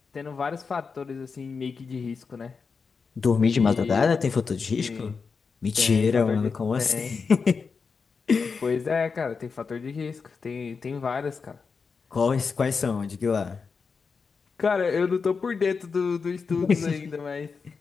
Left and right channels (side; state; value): right; quieter; 5.2 dB